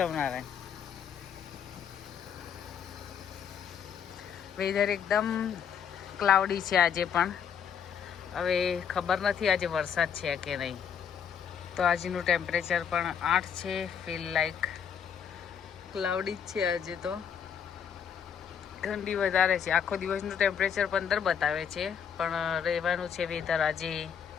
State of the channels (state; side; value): quieter; right; 7.8 dB